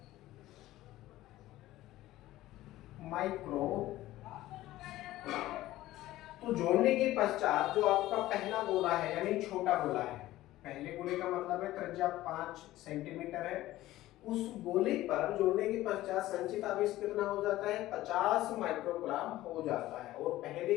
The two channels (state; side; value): quieter; right; 15.8 dB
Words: तो जोड़ने के पश्चात जो आपका पहला गोला है यानी छोटा गोला है, पहले गोले का मतलब है त्रिज्या 5 सेंटीमीटर है, उस गोले पर जोड़ने के पश्चात संचित आवेश कितना हो जाता है? 50 माइक्रोग्राम हो जाता है। और